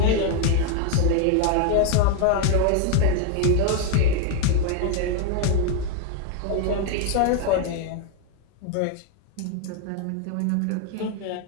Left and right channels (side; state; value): both; different; correlation 0.01